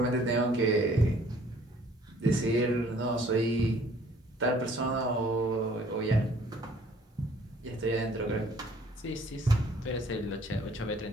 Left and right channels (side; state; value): both; normal; correlation 0.57